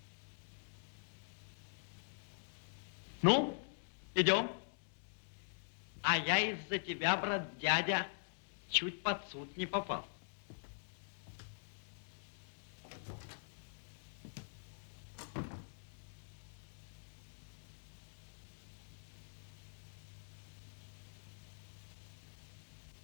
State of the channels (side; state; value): right; silent; digital silence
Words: Ну, идем. А я из-за тебя, брат дядя, чуть под суд не попал.